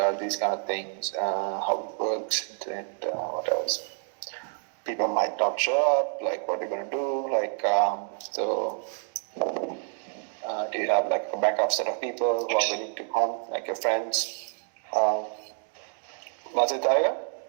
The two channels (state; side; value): silent; left; 59 dB below the other